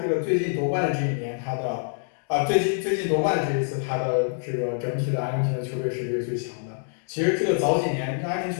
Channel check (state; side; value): silent; right; digital silence